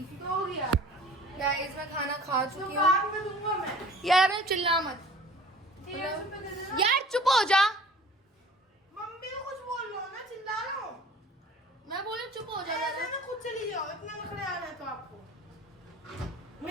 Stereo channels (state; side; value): normal; both; correlation 0.46